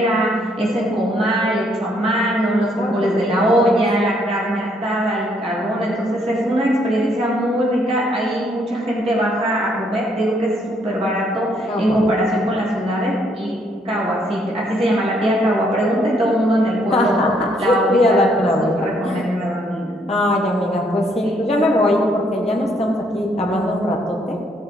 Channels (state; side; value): normal; both; correlation 0.69